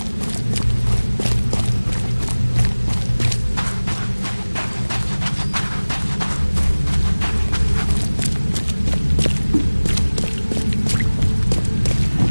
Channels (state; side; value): inverted; both; correlation -1.00